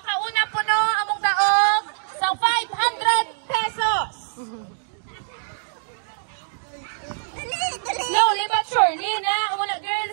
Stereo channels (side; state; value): left; silent; digital silence